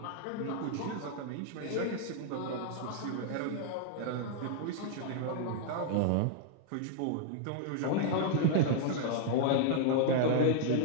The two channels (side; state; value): both; different; correlation -0.01